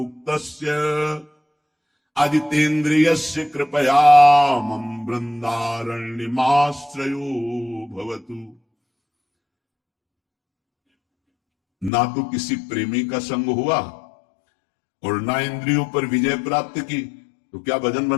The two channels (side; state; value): right; drops out; at 11.9 s